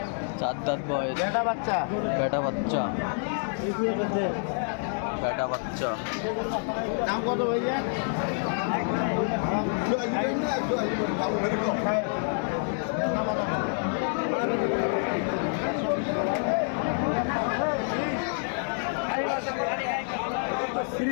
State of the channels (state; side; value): silent; right; 60 dB below the other